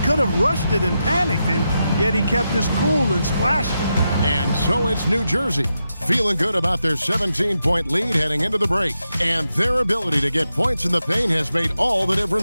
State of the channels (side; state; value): both; inverted; correlation -0.87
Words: could have rushed it and panicked, and yet he kept his cool and splashed it. And so it's New Jersey, feeling good about their 17-point lead heading into the break. And their ability to get points in the paint has made all the